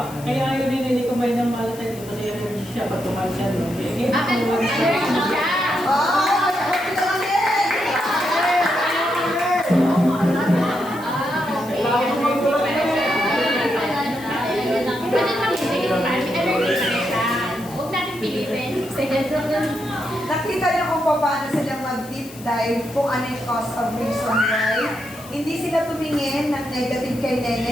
kaya ayaw ni Nene kumain ng malatin kasi ayaw siya pag kumain siya. No? Allergy siya! Ah! Kita lang din! Pwede lang hindi. Allergy siya. Huwag natin pilitin. Nakita niyo kung paano sila mag-deep dive kung ano yung cause of reason why. Hindi sila tumingin ng negative kay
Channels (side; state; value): left; noise; hiss, 19 dB below the sound